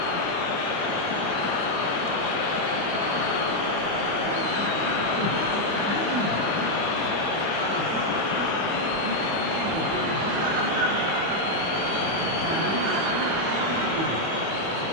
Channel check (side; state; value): left; late; 4.9 ms